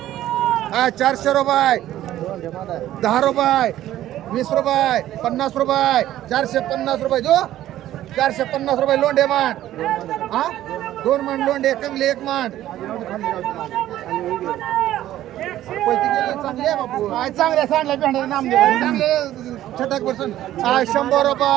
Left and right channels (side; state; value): left; quieter; 13.4 dB